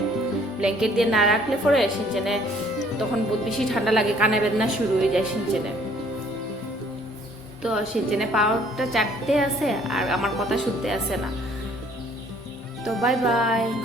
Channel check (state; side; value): normal; both; correlation 0.59